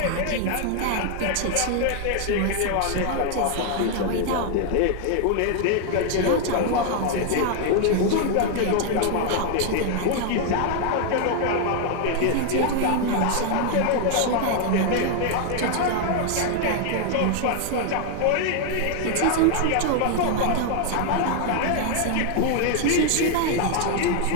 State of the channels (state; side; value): different; both; correlation 0.00